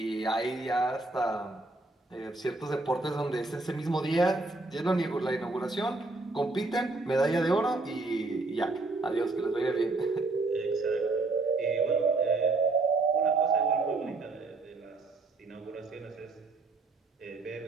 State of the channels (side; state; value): left; quieter; 3.4 dB